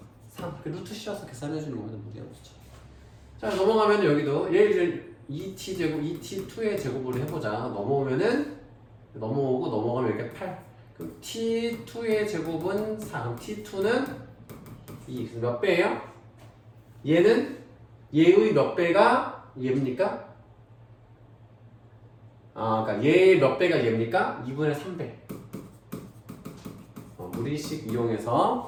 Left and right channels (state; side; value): identical; both; correlation 1.00